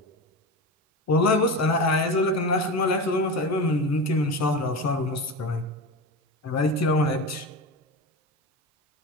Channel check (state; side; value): normal; both; correlation 0.25